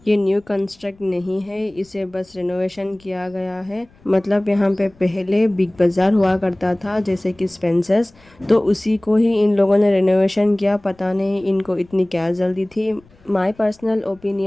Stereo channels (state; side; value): noise; left; rumble, 29 dB below the sound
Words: ये न्यू कंस्ट्रक्ट नहीं है, इसे बस रिनोवेशन किया गया है। मतलब यहाँ पे पहले बिग बाजार हुआ करता था जैसे कि स्पेंसर्स, तो उसी को ही इन लोगों ने रिनोवेशन किया। पता नहीं इनको इतनी क्या जल्दी थी। माय पर्सनल